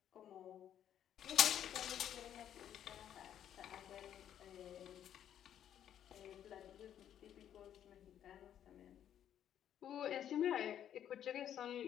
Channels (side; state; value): right; quieter; 10.2 dB